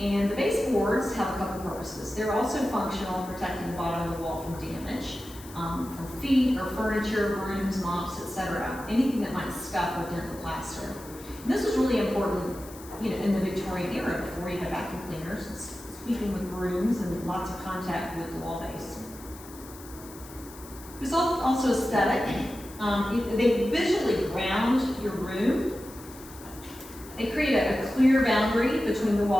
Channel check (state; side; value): noise; left; hiss, 18 dB below the sound